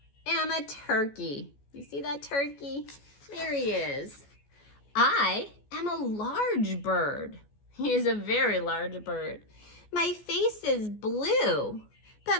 am a turkey. You see that turkey? There he is. I am a large bird. He is a very large bird. My face is blue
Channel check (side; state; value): right; late; 14 ms